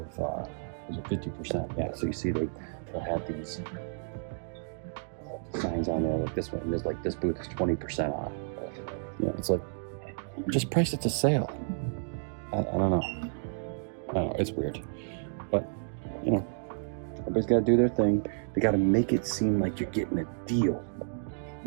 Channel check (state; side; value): silent; left; digital silence